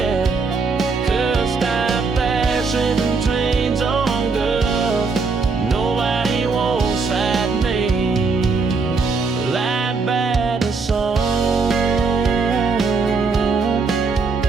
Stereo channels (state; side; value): quieter; left; 4.5 dB